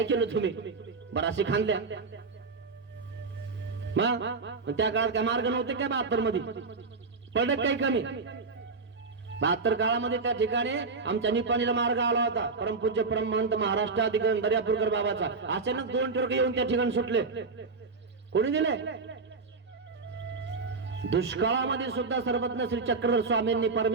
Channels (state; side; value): quieter; left; 4.3 dB